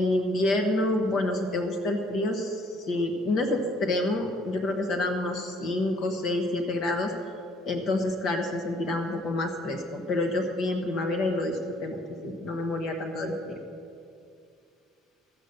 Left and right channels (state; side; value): normal; both; correlation 0.62